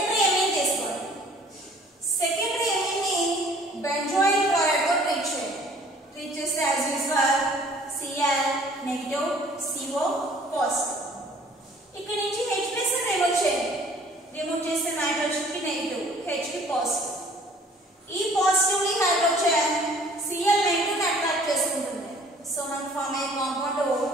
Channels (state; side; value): normal; both; correlation 0.54